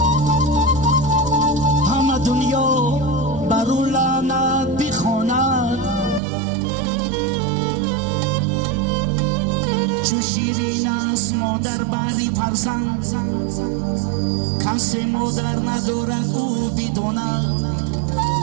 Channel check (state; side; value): drops out; left; at 6.2 s